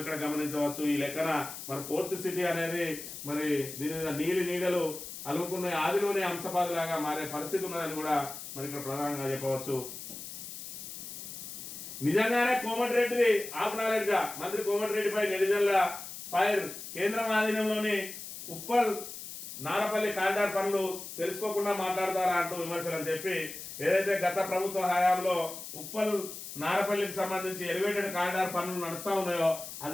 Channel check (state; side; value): noise; left; hiss, 10 dB below the sound